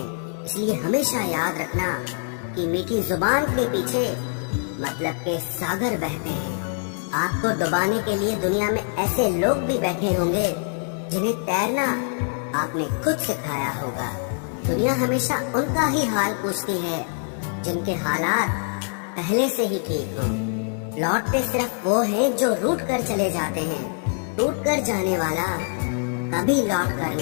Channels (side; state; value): right; silent; 56 dB below the other